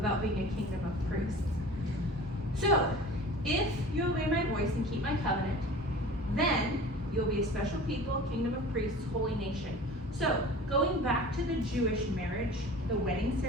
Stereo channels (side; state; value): both; normal; correlation 0.40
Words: being a kingdom of priests. So, if you obey my voice and keep my covenant, then you'll be a special people, kingdom of priests, holy nation. So, going back to the Jewish marriage, the wedding